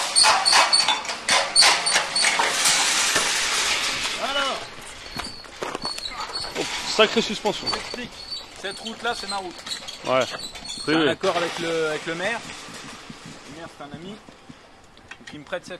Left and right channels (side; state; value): both; identical; correlation 1.00